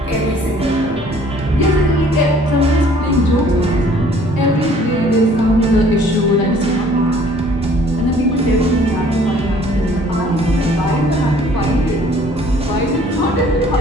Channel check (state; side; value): normal; both; correlation 0.56